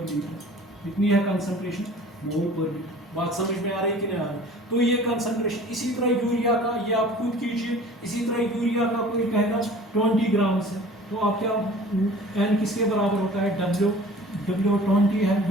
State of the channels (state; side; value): normal; both; correlation 0.45